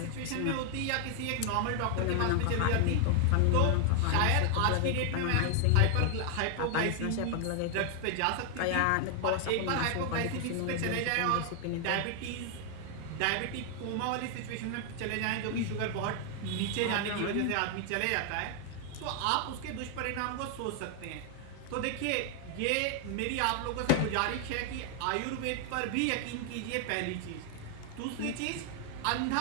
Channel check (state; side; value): different; both; correlation 0.00